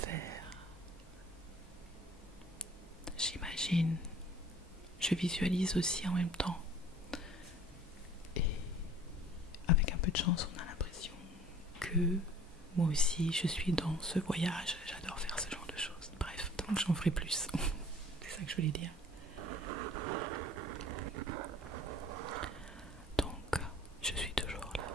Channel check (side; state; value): both; normal; correlation 0.50